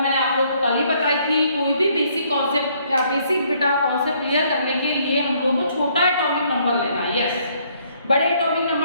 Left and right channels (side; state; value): both; inverted; correlation -0.66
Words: मैंने आप लोगों को कल ही बताई थी कोई भी बेसिक कॉन्सेप्ट या बेसिक बेटा कॉन्सेप्ट क्लियर करने के लिए हम लोगों को छोटा एटॉमिक नंबर लेना है। यस, बड़े एटॉमिक